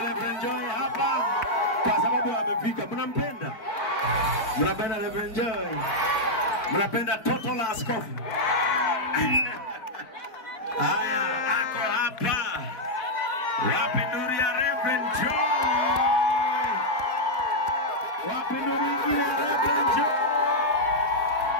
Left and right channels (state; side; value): late; right; 4.5 ms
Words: Reverend Joy hapa kwa sababu amefika. Mnampenda? Mnapenda Reverend Joy? Mnapenda toto la askofu? Haya, ako hapa. Wapi nuru ya Reverend Joy? Wapi nuru ingine ya Reverend Joy?